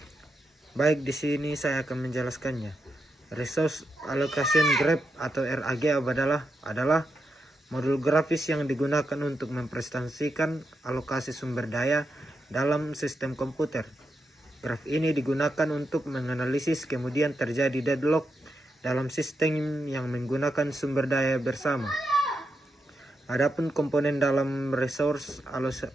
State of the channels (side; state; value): both; normal; correlation 0.85